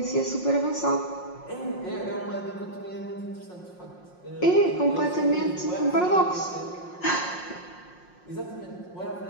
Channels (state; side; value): late; right; 5.6 ms